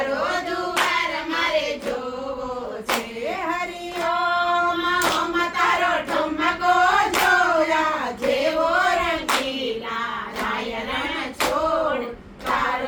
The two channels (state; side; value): identical; both; correlation 1.00